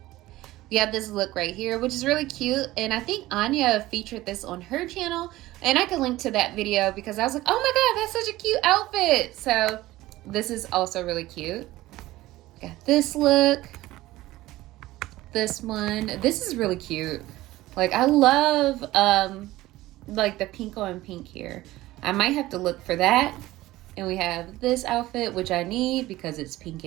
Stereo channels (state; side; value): quieter; left; 17.1 dB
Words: We have this look right here, which is really cute, and I think Anya featured this on her channel, and I can link to that video because I was like, oh my god, that's such a cute outfit. So this is also really cute. Got this look, this one. This is really cute. Like, I love like the pink on pink here. I might have to look for that. And we have this outfit, which I need because it's pink